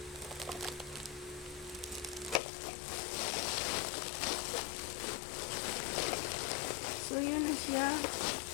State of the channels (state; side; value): drops out; right; at 2.4 s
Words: So, yun na siya.